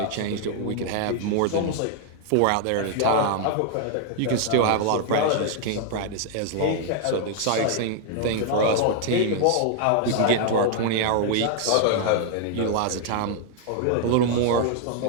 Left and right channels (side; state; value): both; different; correlation 0.00